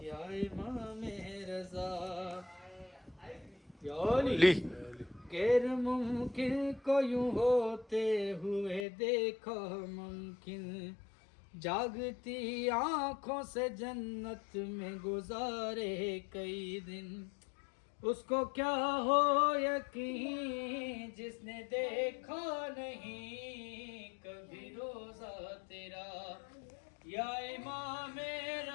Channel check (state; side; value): drops out; right; at 8.8 s